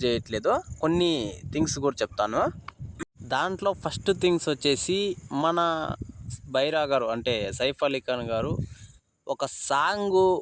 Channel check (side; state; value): both; identical; correlation 1.00